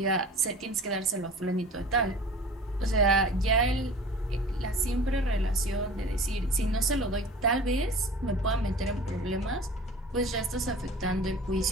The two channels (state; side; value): normal; both; correlation 0.41